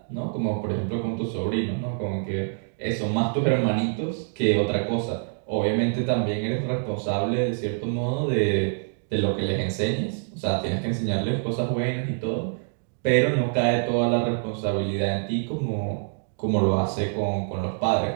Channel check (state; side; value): silent; left; digital silence